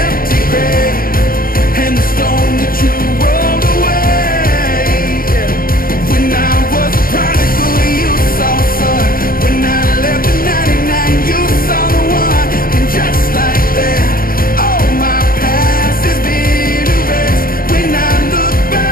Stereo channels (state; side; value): late; right; 0.42 ms